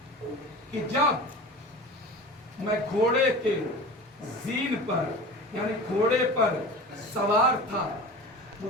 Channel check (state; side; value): normal; both; correlation 0.35